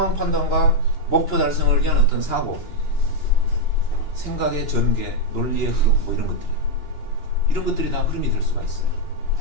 판단과 목표 달성을 위한 어떤 사고, 생각의 전개, 논리의 흐름, 뭐 이런 것들이, 이런 것들이 다 흐름이 될 수가 있어요.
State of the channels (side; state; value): right; late; 2.9 ms